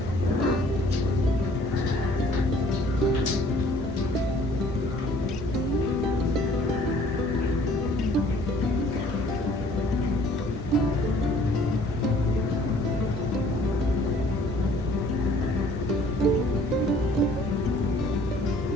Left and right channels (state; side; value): normal; both; correlation 0.56